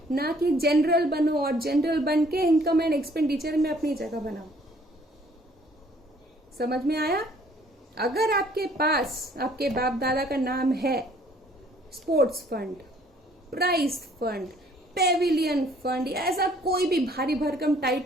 ना कि जनरल बनो और जनरल बन के इनकम एंड एक्सपेंडिचर में अपनी जगह बनाओ। समझ में आया? अगर आपके पास आपके बाप दादा का नाम है sports fund, prize fund, pavilion fund, ऐसा कोई भी भारी भरकम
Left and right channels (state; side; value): normal; both; correlation 0.60